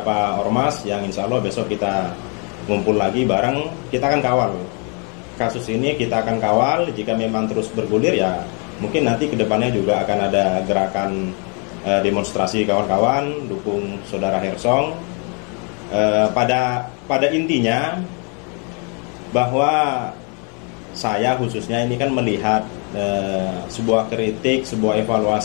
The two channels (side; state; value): right; quieter; 36.3 dB